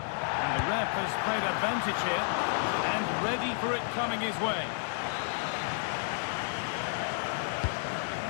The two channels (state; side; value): silent; right; 57 dB below the other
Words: And the ref has played advantage here, and ready for it coming his way.